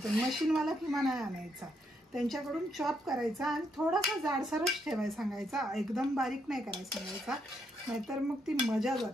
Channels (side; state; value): both; normal; correlation 0.77